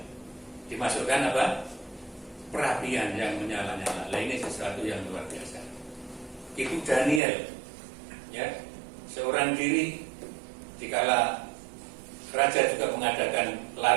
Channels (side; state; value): left; drops out; at 7.2 s